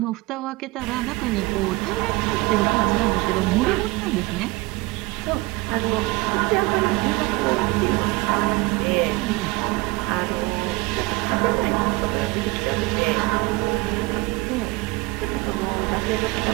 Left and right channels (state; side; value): quieter; left; 22.4 dB